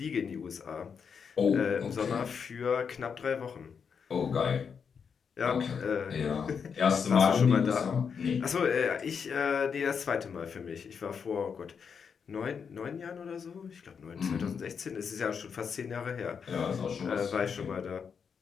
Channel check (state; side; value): quieter; right; 6.5 dB